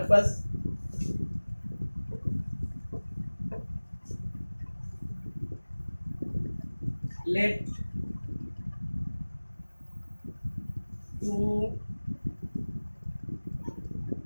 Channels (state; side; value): inverted; both; correlation -1.00